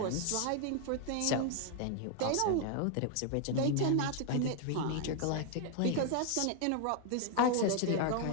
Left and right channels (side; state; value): both; different; correlation 0.00